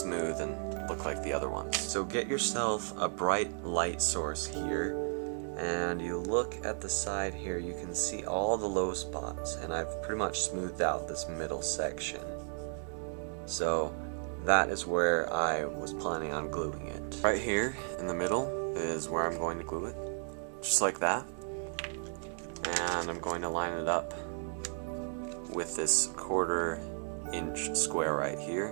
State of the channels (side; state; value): left; silent; 55 dB below the other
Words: smooth and look like the other ones. So get yourself a bright light source here, and you look at the side here, you can see all the low spots, and I've pretty much smoothed out this middle section. So that is where I was planning on gluing it. Right here in the middle is where I'm going to glue it, just like that. And I'm going to line it up with this 1/4 inch square right